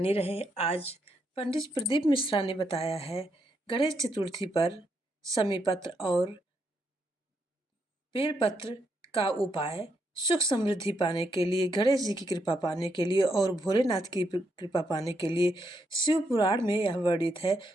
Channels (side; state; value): both; normal; correlation 0.79